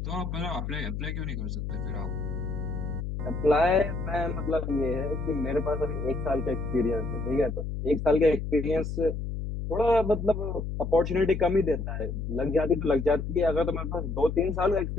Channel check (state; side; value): noise; left; hum, 4 dB below the sound